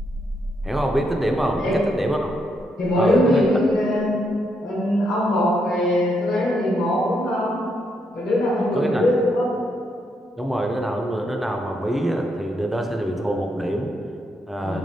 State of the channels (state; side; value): normal; both; correlation 0.78